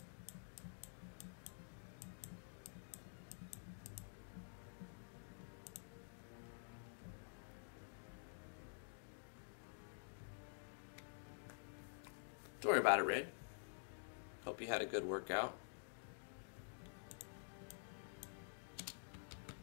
Don't worry about it, Red. Hope you had a good workout.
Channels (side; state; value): right; silent; digital silence